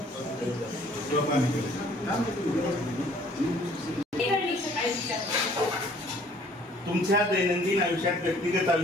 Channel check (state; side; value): normal; both; correlation 0.57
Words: तुमच्या दैनंदिन आयुष्यात, व्यक्तिगत